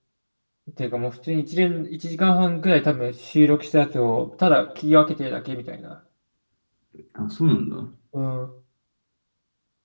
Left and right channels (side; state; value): both; inverted; correlation -1.00